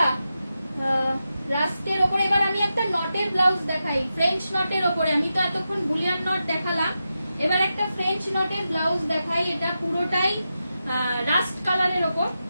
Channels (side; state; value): both; inverted; correlation -0.89